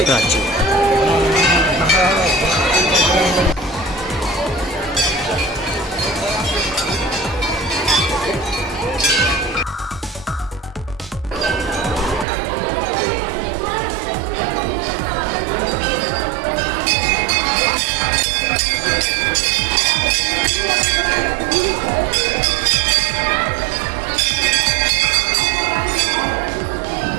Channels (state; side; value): drops out; left; at 12.2 s